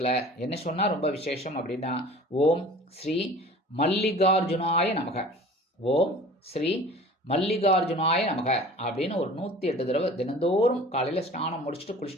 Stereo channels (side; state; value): both; normal; correlation 0.44